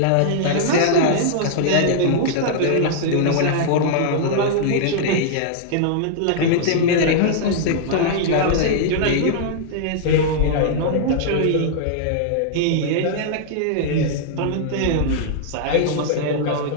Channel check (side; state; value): both; different; correlation -0.01